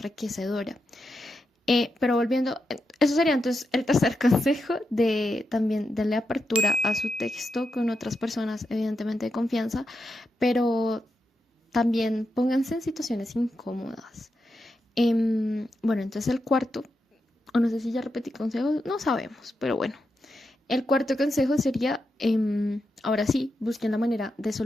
Pero volviendo, eso sería entonces el tercer consejo de también darle apertura a su texto con otras personas, evidentemente de confianza, pero también pónganse en situaciones incómodas. Bueno, entonces el cuarto, o no sé si ya repetí consejos, no sabemos, pero bueno. El cuarto consejo sería, ahora sí, busquen la manera de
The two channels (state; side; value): normal; both; correlation 0.86